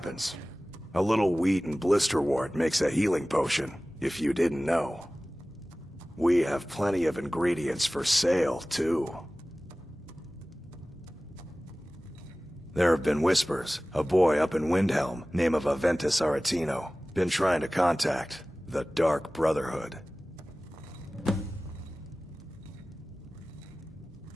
A little wheat and blisterwort makes a healing potion, if you didn't know. We have plenty of ingredients for sale, too. There have been whispers. A boy up in Windhelm, name of Aventus Aretino, been trying to contact the Dark Brotherhood.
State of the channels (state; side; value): normal; both; correlation 0.97